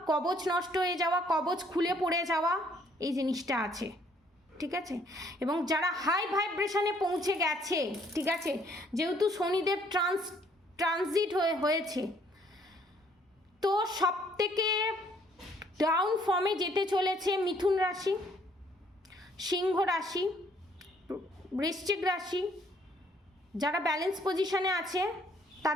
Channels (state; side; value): normal; both; correlation 0.64